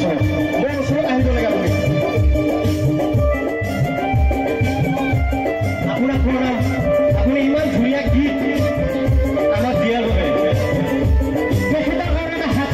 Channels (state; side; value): identical; both; correlation 1.00